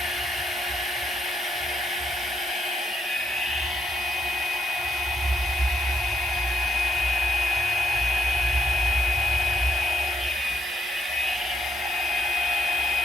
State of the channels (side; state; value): both; normal; correlation 0.76